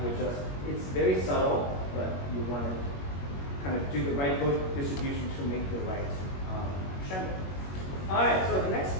would just, it's very subtle, but you want to kind of do the right book distribution to make the right crescendo. All right, so the next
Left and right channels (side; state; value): right; late; 21 ms